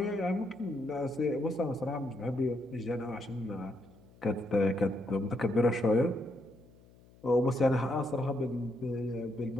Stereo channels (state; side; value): noise; left; hum, 26 dB below the sound